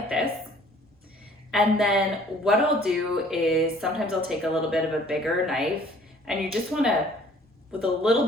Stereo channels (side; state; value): both; normal; correlation 0.55